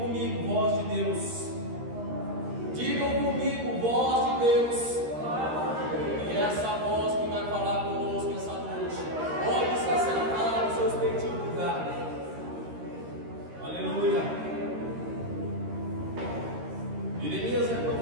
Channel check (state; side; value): late; left; 13 ms